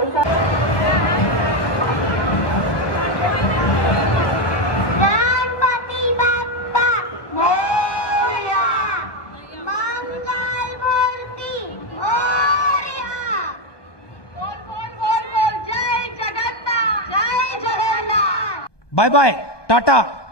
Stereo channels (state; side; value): late; right; 1.3 ms